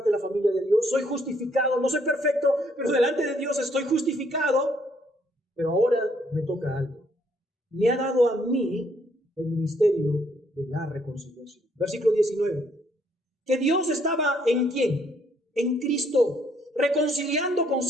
de la familia de Dios, soy justificado, no soy perfecto, pero delante de Dios estoy justificado. Pero ahora me toca algo. Me ha dado a mí el ministerio de la reconciliación. Versículo 19. Que Dios estaba ¿en quién? En Cristo, reconciliando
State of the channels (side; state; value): both; normal; correlation 0.69